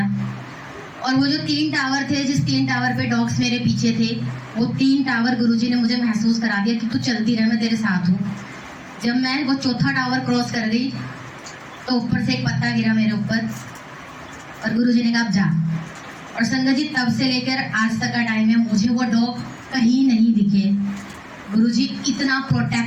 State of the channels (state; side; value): identical; both; correlation 1.00